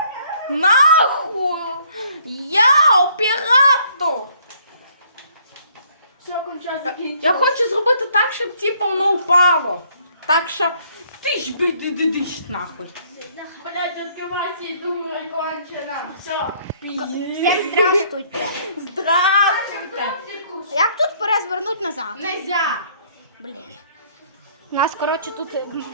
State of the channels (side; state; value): both; inverted; correlation -0.62